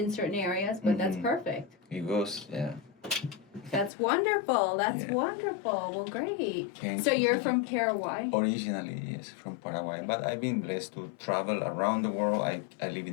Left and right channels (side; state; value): right; drops out; at 3.9 s